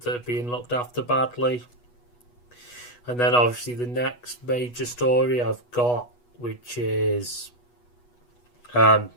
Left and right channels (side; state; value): right; late; 8.2 ms